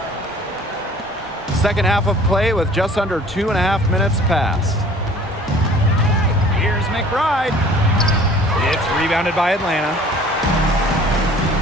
Second half of play with just under 2.5 minutes passed. Here's McBride. It's rebounded by Atlanta.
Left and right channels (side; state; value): both; normal; correlation 0.50